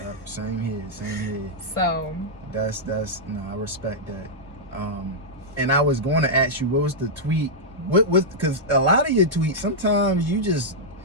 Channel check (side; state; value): both; normal; correlation -0.07